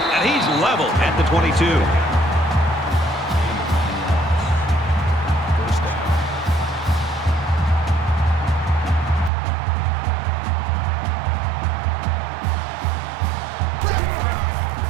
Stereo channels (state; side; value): drops out; left; at 9.3 s